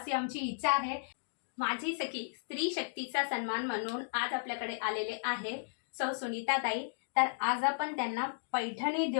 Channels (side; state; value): right; silent; digital silence